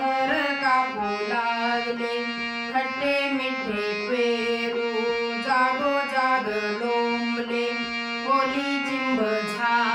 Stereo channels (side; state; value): both; identical; correlation 1.00